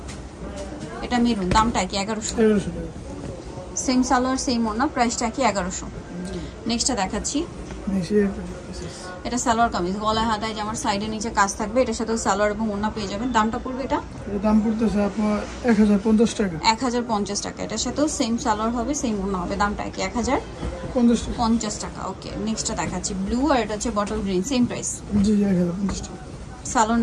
এটা মেরুন, দামটা কি? 1100 টাকা। সেম সালোয়ার সেম ওড়না, প্রাইসটা কি? 1100। নেক্সটটা দেখাচ্ছি, এটা সালোয়ার কামিজ, গলায় হাতায় জামার সাইডে নিচে কাজ থাকবে। এটার সাথে সালোয়ার এবং ওড়না পেয়ে যাবেন। দামটা পড়বে এটা? এর দাম পড়তেছে আপনার 1050 টাকা। 1050 টাকা। এটার সাথেও সেম সালোয়ার হবে, সেম ওড়না হবে। দামটা কি? 1050 টাকা। ওকে, নেক্সটটা দেখাচ্ছি, ব্লু, আর এটা হচ্ছে বটল গ্রিন, সেম প্রাইস। জি, 1050 টাকা। সালোয়ার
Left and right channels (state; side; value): identical; both; correlation 1.00